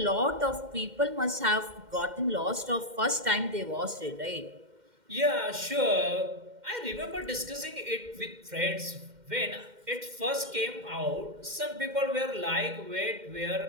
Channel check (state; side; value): late; left; 2.1 ms